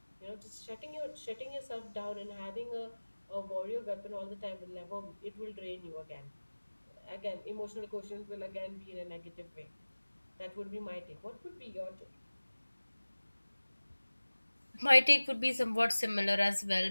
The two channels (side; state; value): both; inverted; correlation -1.00